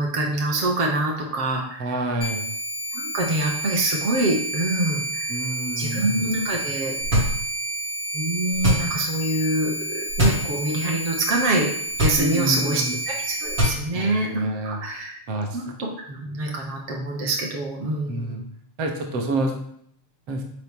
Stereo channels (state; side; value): late; left; 7.3 ms